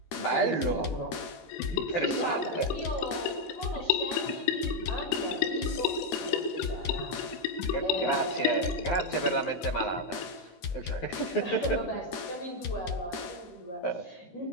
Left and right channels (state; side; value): late; right; 12 ms